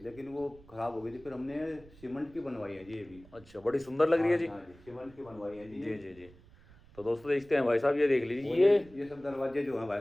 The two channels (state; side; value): noise; right; rumble, 24 dB below the sound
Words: लेकिन वो खराब हो गई थी, फिर हमने सीमेंट की बनवाई है जी ये भी। अच्छा बड़ी सुंदर लग रही है जी। हाँ जी, सीमेंट की बनवाई है जी। जी जी जी। तो दोस्तों देखते हैं भाई साहब, ये देख लीजिए ये सब दरवाजे जो हैं भाई